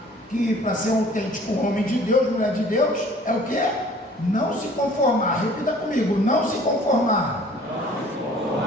que para ser um autêntico homem de Deus, mulher de Deus, é o quê? Não se conformar. Repita comigo: não se conformar.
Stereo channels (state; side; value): normal; both; correlation 0.52